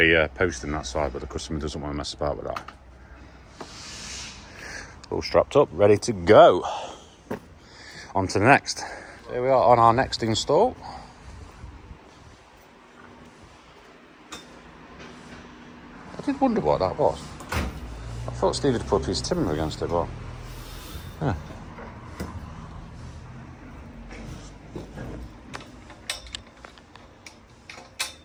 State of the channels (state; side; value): identical; both; correlation 1.00